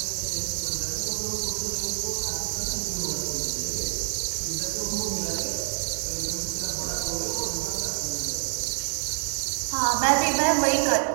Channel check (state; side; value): silent; left; digital silence